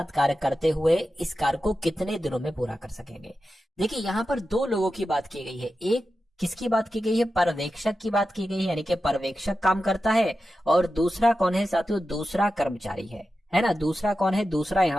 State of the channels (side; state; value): both; normal; correlation 0.91